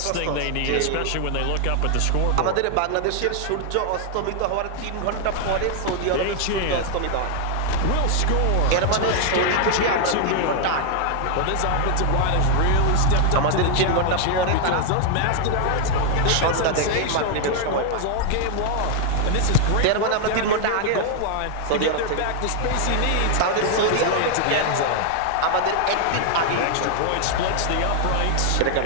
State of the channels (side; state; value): both; different; correlation 0.00